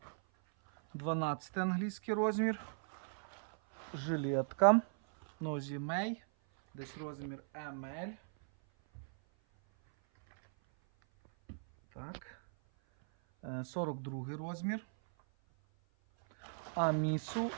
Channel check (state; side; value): silent; left; 53 dB below the other